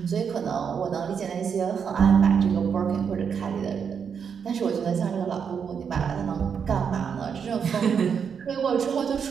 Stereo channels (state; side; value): quieter; left; 6.9 dB